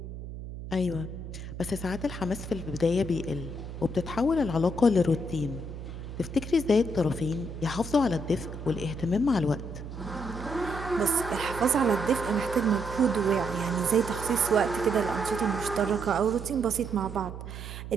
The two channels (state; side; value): noise; right; hum, 10 dB below the sound